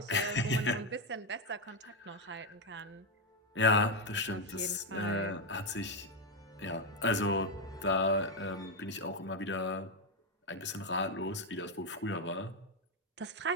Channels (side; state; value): both; normal; correlation 0.05